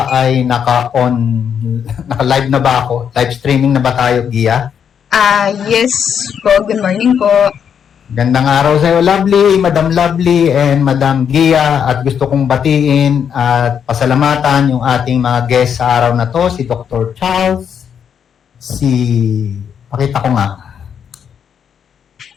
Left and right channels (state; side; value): quieter; right; 7.8 dB